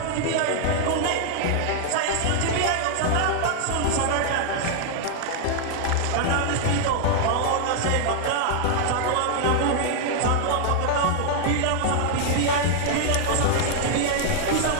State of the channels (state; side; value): different; both; correlation 0.00